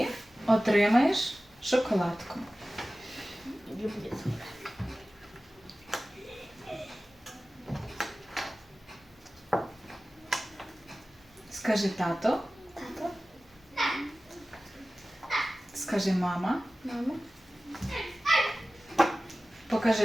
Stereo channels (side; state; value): both; normal; correlation 0.96